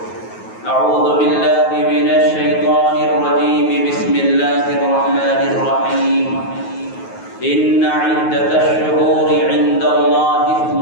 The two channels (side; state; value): right; late; 9.3 ms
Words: أعوذ بالله من الشيطان الرجيم بسم الله الرحمن الرحيم إن عدة الشهور عند الله